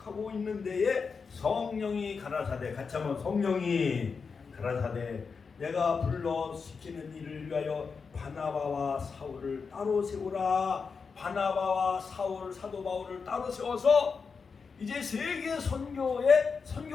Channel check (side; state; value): right; quieter; 5.3 dB